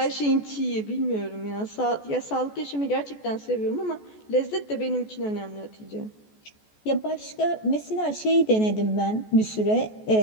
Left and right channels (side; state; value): right; late; 14 ms